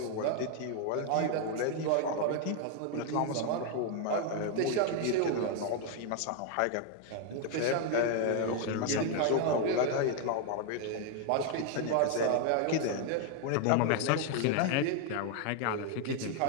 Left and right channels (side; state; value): both; different; correlation 0.00